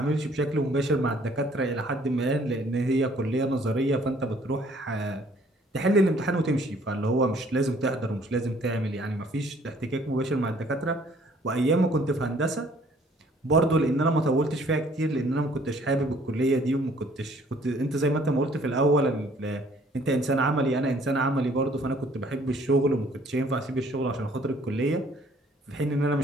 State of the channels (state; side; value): normal; both; correlation 0.59